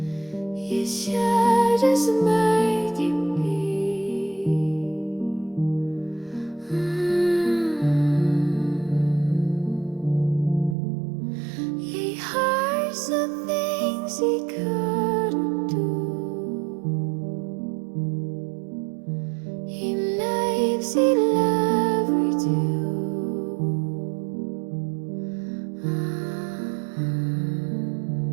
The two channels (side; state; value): left; drops out; at 10.8 s